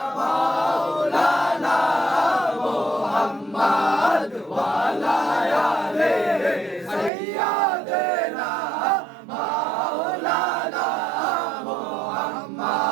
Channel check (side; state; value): left; drops out; at 7.1 s